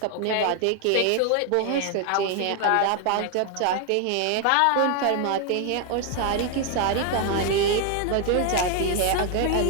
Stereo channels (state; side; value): different; both; correlation 0.00